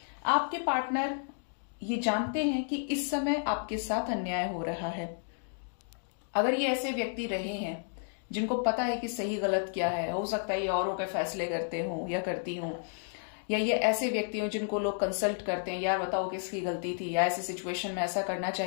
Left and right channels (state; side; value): silent; right; digital silence